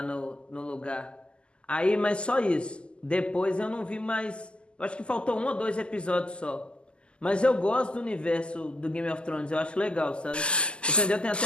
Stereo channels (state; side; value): late; right; 0.051 ms